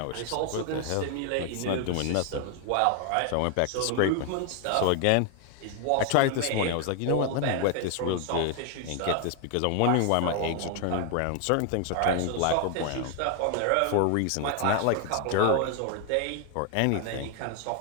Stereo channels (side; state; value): both; different; correlation 0.00